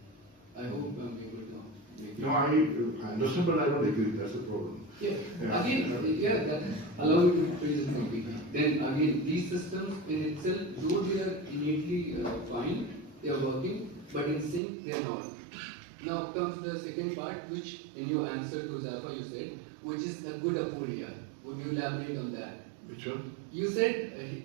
I hope I'm able to make it. No, I understand, but I don't agree. That's the problem. Yeah. Again, that allow me to phrase it completely. Then again, these systems in itself, though they are innately fine, they are working, but in sync they are not. Now comes the second part, which in your answer to Zafar you said, which is a good aporia. Would you elaborate on that? Which one? You said,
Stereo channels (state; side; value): drops out; left; at 14.6 s